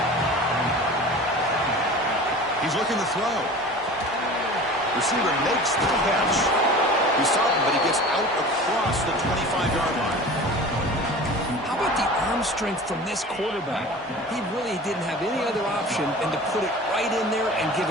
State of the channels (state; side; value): normal; both; correlation 0.38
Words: He's looking to throw. Receiver makes the catch. He saw him, but he gets out across the 25-yard line. How about the arm strength from this quarterback? He really didn't have any other option than to put it right in there and